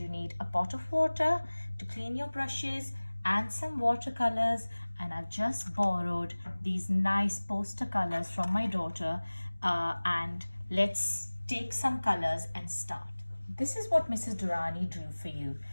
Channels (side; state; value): both; inverted; correlation -1.00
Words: need a pot of water to clean your brushes and some watercolors. And I've just borrowed these nice poster colors from my daughter, and let's take some colors and start. This is what Mrs. Durrani drew for you.